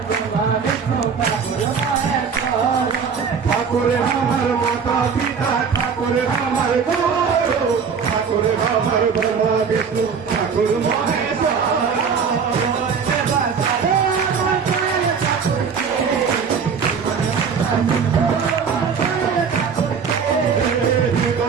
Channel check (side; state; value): left; quieter; 6.2 dB